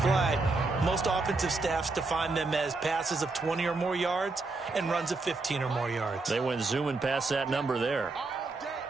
most offensive staffs define them as passes of 20 or more yards and runs of 15 or more yards. They went zooming past that number there.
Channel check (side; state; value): left; quieter; 3.6 dB